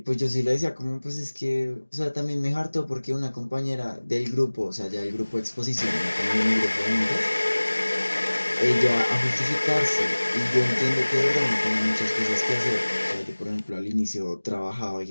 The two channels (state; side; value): inverted; both; correlation -1.00